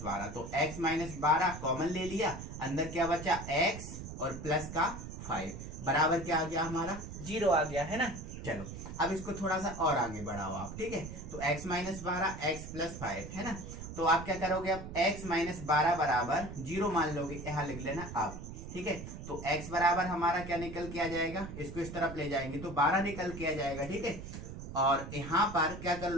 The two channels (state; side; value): noise; right; rumble, 10 dB below the sound